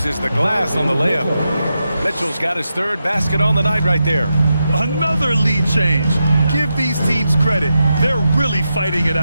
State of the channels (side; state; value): both; inverted; correlation -0.87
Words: the glass on the layup. Mitchell's got his 3rd basket on the night right there. Another lead change. Give these teams credit. They're really fighting it